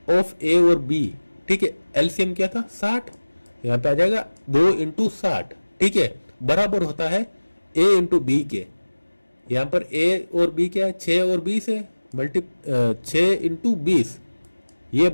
ऑफ a और b, ठीक है। एलसीएम क्या था 60, यहाँ पे आ जाएगा 2 इंटू 60, ठीक है, बराबर होता है a इंटू बी के। यहाँ पर a और b क्या है 6 और 20 है, 6 इंटू 20, ये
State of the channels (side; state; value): both; inverted; correlation -1.00